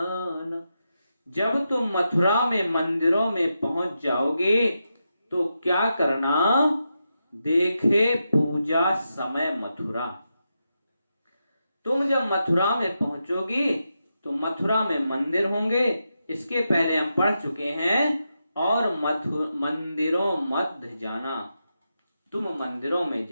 जब तुम मथुरा में मंदिरों में पहुंच जाओगे तो क्या करना? देखे पूजा समय मथुरा। तुम जब मथुरा में पहुंचोगी तो मथुरा में मंदिर होंगे। इसके पहले हम पढ़ चुके हैं। और मंदिरों मध्य जाना, तुम मंदिरों में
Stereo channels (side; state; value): both; inverted; correlation -0.87